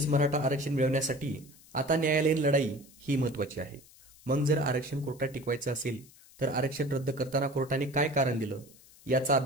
मराठा आरक्षण मिळवण्यासाठी आता न्यायालयीन लढाई ही महत्त्वाची आहे. मग जर आरक्षण कोर्टात टिकवायचं असेल तर आरक्षण रद्द करताना कोर्टाने काय कारण दिलं याचा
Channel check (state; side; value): noise; left; hiss, 24 dB below the sound